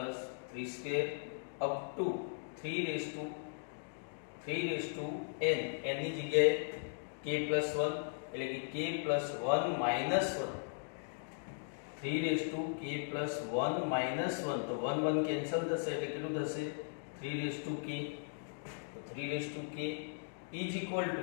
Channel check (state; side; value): silent; right; digital silence